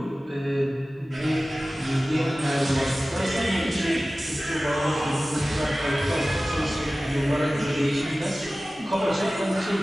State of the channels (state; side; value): normal; both; correlation 0.97